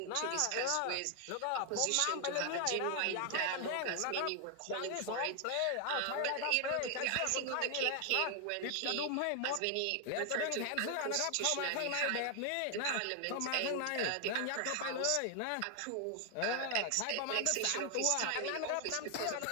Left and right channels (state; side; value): different; both; correlation 0.00